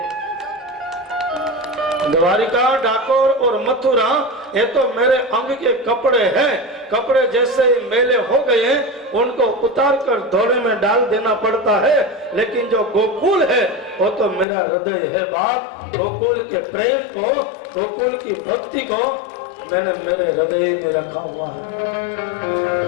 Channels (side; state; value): right; drops out; at 14.5 s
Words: द्वारिका, डाकोर और मथुरा ये तो मेरे अंग के कपड़े हैं। कपड़े जैसे मेले हो गए हैं उनको उतार कर धोने में डाल देना पड़ता है, लेकिन जो गोकुल है वो तो मेरा हृदय है। बात गोकुल के प्रेम को, गोकुल की भक्ति को मैंने मेरे हृदय में रखा हुआ है।